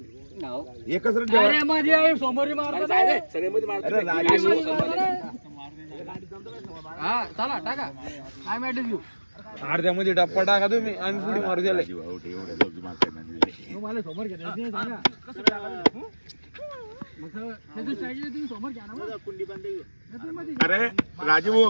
एकच रन अरे मध्ये समोर मारतो सगळे मध्ये अरे राजीव हा चला टाका आय मॅट यू अर्ध्यामध्ये डप्पा टाका तुम्ही आणि पुढे मारू द्याला. मला समोर घ्या अरे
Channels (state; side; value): inverted; both; correlation -1.00